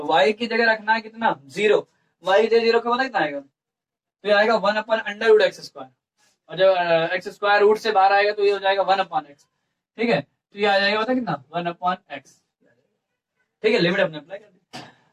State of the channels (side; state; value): both; identical; correlation 1.00